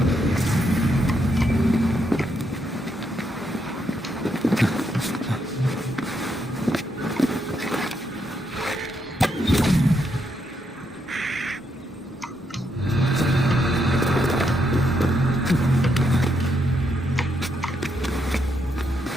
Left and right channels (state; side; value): normal; both; correlation 0.79